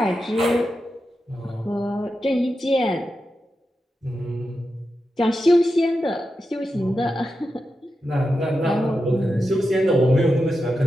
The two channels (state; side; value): normal; both; correlation 0.89